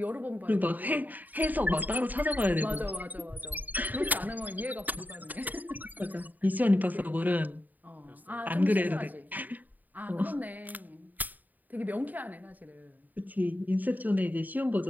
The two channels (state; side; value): late; left; 0.084 ms